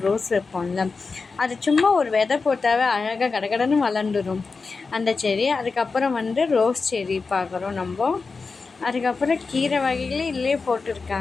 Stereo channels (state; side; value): quieter; right; 4.4 dB